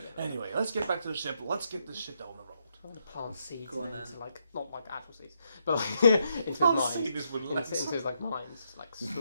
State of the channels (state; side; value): inverted; both; correlation -0.78